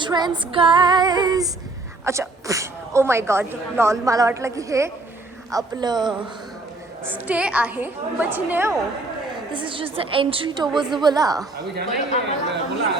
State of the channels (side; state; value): left; quieter; 3.0 dB